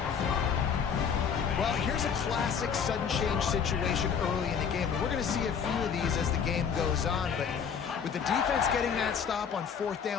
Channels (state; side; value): quieter; right; 7.0 dB